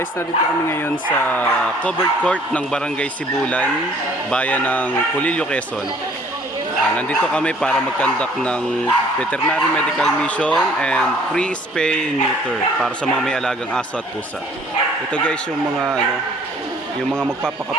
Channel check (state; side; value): normal; both; correlation 0.56